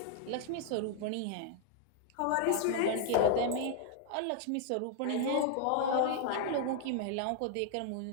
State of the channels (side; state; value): both; different; correlation 0.00